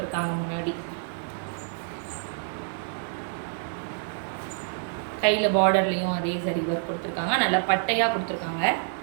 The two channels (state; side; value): silent; left; 60 dB below the other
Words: முன்னாடி கையில் பார்டர்லேயும் அதே ஜரி ஒர்க் கொடுத்துருக்காங்க. நல்லா பட்டையாக கொடுத்துருக்காங்க,